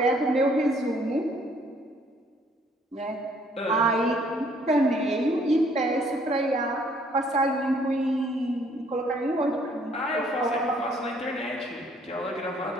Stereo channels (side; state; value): both; normal; correlation 0.63